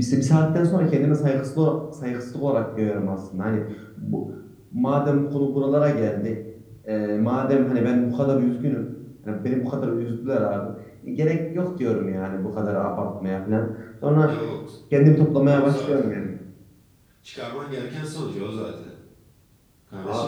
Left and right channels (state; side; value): identical; both; correlation 1.00